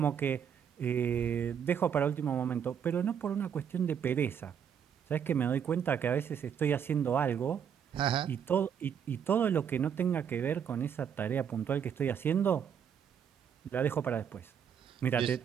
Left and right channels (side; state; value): left; quieter; 8.0 dB